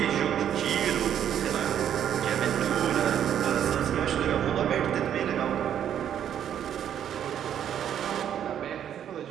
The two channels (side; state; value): left; quieter; 9.7 dB